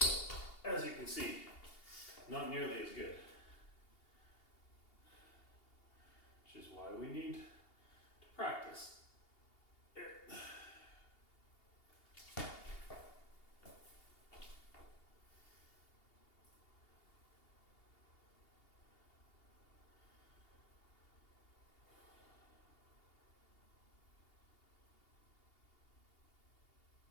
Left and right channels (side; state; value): right; late; 2.8 ms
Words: as you can see, not nearly as good. Which is why we need to practice.